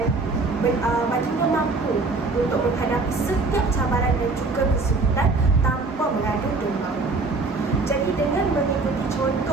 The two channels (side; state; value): left; quieter; 3.7 dB